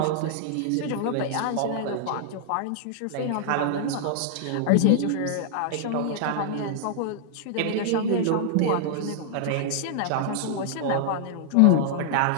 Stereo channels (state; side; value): different; both; correlation -0.01